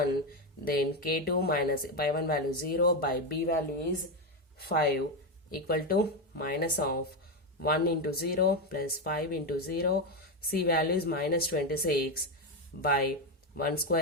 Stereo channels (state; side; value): normal; both; correlation 0.10